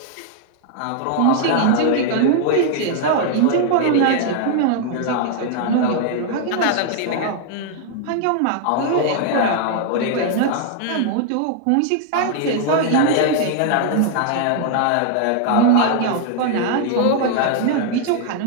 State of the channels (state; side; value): different; both; correlation 0.00